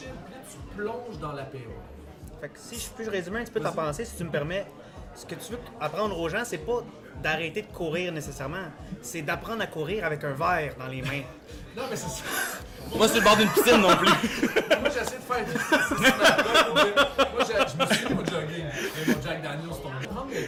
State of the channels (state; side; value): identical; both; correlation 1.00